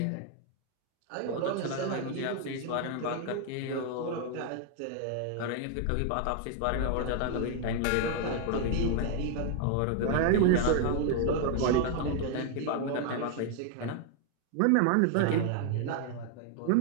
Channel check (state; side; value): different; both; correlation 0.00